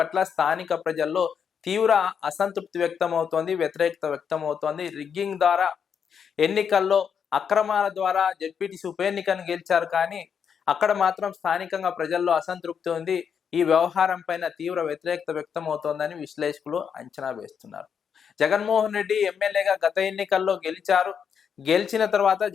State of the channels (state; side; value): quieter; right; 7.2 dB